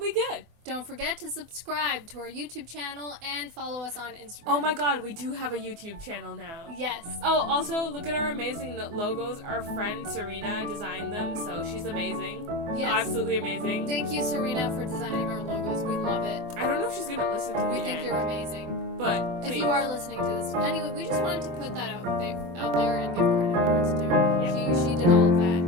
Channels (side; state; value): left; late; 24 ms